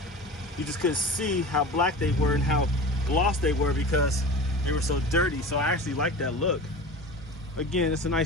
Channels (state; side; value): normal; both; correlation 0.33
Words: You just couldn't see how black they were and how gloss they were because they were so dirty. So I actually like that look. Again, it's a